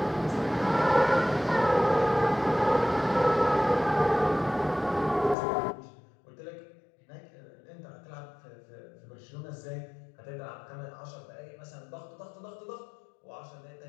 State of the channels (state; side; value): drops out; right; at 5.4 s